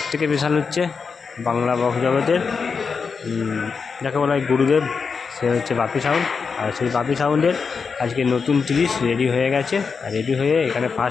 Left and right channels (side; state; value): right; quieter; 5.4 dB